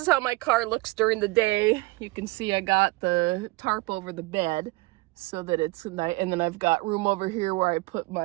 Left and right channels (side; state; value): left; quieter; 23.2 dB